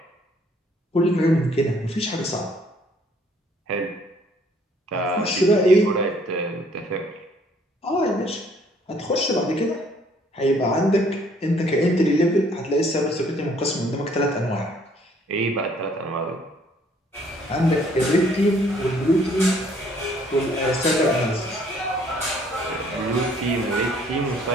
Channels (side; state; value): both; normal; correlation 0.62